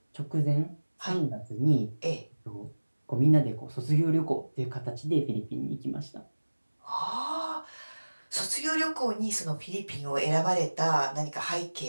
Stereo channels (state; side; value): inverted; both; correlation -1.00